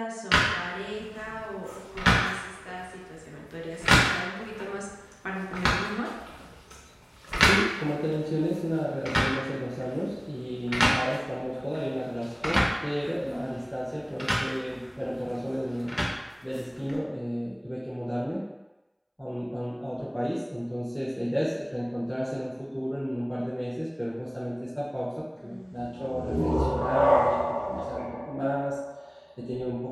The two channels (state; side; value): identical; both; correlation 1.00